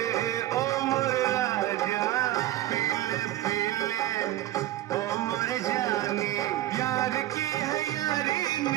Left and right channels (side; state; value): left; quieter; 14.5 dB